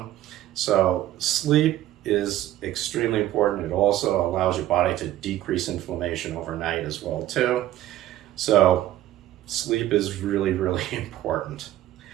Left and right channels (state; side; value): quieter; left; 13.8 dB